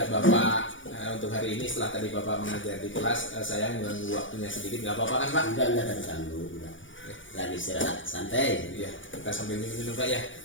Bapak untuk hari ini setelah tadi Bapak mengajar di kelas, saya mengganggu waktunya sedikit, nggak apa-apa kan Pak? Enggak ada ganggu. Lagi istirahat santai. Iya, kita sambil minum Pak ya,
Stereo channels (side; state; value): right; late; 0.56 ms